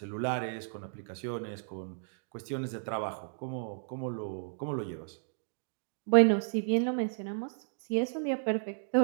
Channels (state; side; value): silent; left; digital silence